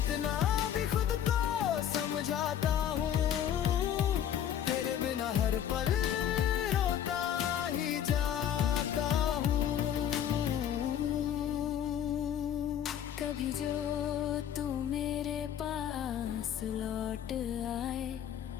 भी खुद को समझाता हूँ, तेरे बिना हर पल रोता ही जाता हूँ। कभी जो तू मेरे पास लौट आए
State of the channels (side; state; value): right; quieter; 9.9 dB